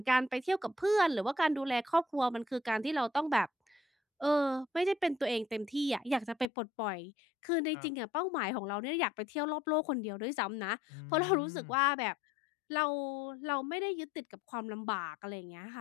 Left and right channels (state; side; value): drops out; right; at 6.5 s